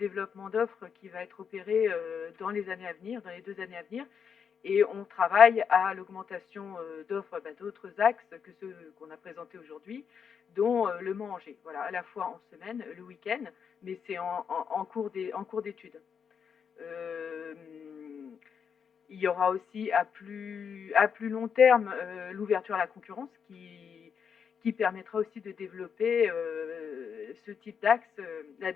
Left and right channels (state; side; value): quieter; right; 6.9 dB